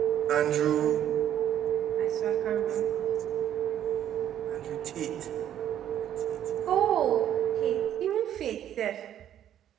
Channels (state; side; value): quieter; left; 10.7 dB